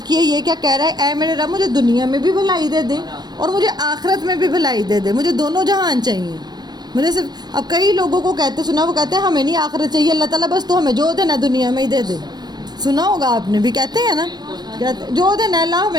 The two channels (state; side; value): late; left; 0.20 ms